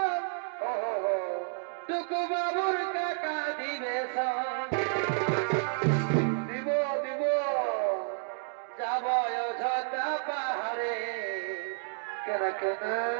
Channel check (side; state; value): left; silent; digital silence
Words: টুকু বাবুর কাকা দিবে দিব দিব যাব অযোধ্যা পাহাড়ে কেন কেন